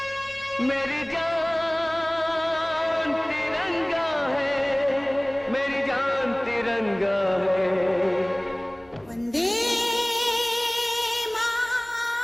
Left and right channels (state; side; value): noise; left; hum, 29 dB below the sound